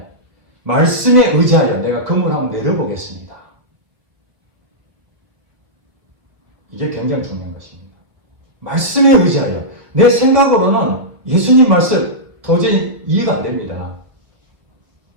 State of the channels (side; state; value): left; late; 1.7 ms